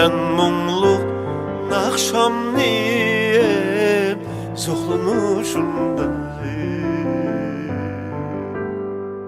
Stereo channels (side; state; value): both; identical; correlation 1.00